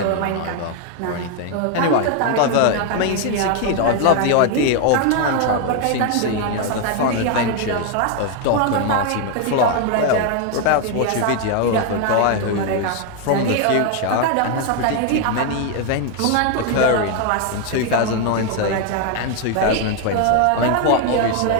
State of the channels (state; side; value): different; both; correlation 0.01